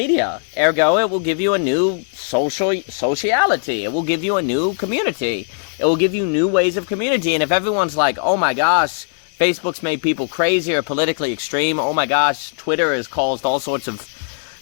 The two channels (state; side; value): silent; right; 66 dB below the other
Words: Ergo, it will give you a new sociality. It will give you a new community. It will give you new ways of community. And if everyone's like, oh my gosh, Facebook's made people crazy or politically extreme, oh my gosh, Twitter has caused all sorts of,